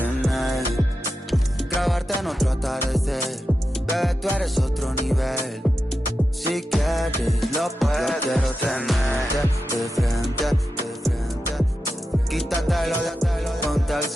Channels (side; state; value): both; normal; correlation 0.90